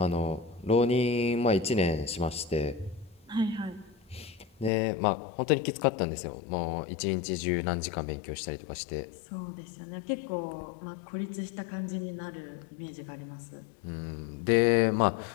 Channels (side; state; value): right; drops out; at 4.7 s